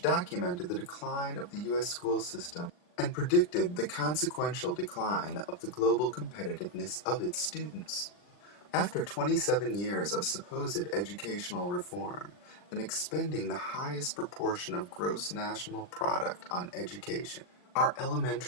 documented the decline of the U.S. school system and predicted the consequential decline of the global competitiveness of its students. After 27 years of supposed educational reform and expending the highest proportion of gross national product on education, our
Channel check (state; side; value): late; right; 40 ms